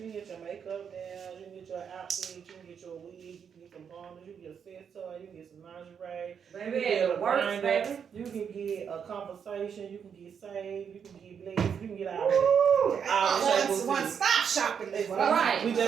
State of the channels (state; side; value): quieter; left; 7.3 dB